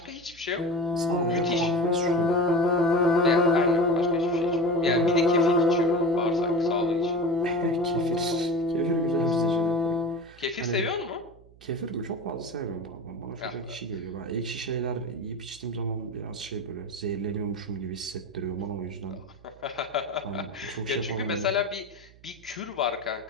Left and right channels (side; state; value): right; noise; hum, 25 dB below the sound